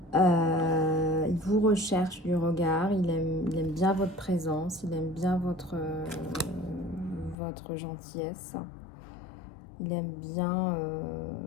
Il vous recherche du regard, il aime bien votre présence, il aime bien votre gentillesse. Il aime bien...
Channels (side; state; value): right; drops out; at 7.4 s